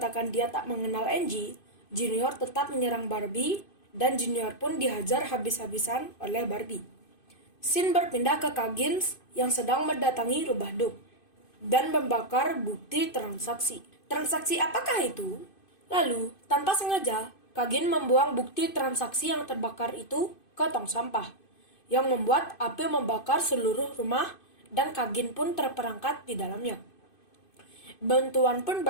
dia tak mengenal Angie, Junior tetap menyerang Barbie dan Junior pun dihajar habis-habisan oleh Barbie. Sin berpindah ke Coggins yang sedang mendatangi rubah Duke dan membakar bukti transaksi. Transaksi apakah itu? Lalu, tanpa sengaja, Coggins membuang bukti transaksi yang terbakar itu ke tong sampah, yang membuat api membakar seluruh rumah dan Coggins pun terperangkap di dalamnya. Bantuan pun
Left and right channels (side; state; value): right; late; 2.5 ms